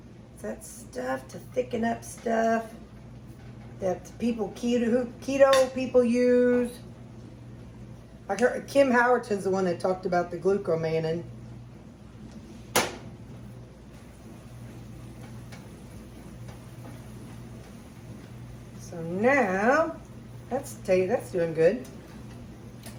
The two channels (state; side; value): identical; both; correlation 1.00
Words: It's that stuff to thicken up stuff that people, keto people use. I heard Kim Howerton's the one that talked about the glucomannan. So now, that's doing good.